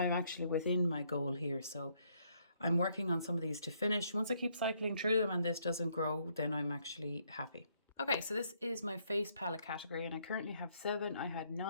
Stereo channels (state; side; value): inverted; both; correlation -0.71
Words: actually within my goal here. So I'm working on some of these to finish. Once I keep cycling through them and this doesn't grow, then I'm actually happy. Okay, so this is my face palette category, and I currently have 7. I had